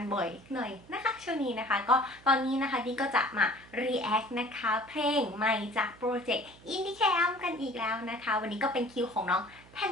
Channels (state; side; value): noise; right; hum, 24 dB below the sound